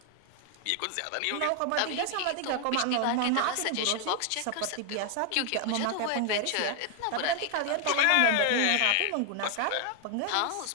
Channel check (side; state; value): both; different; correlation 0.00